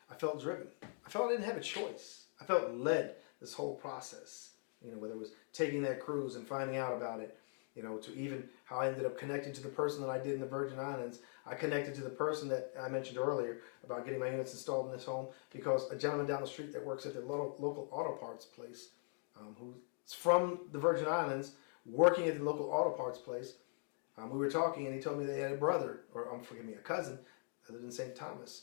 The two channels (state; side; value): silent; right; 50 dB below the other